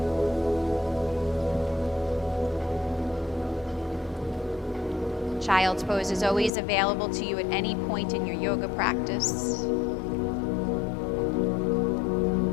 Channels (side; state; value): right; drops out; at 6.5 s